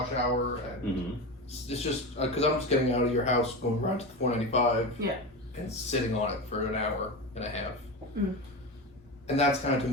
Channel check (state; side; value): normal; both; correlation 0.23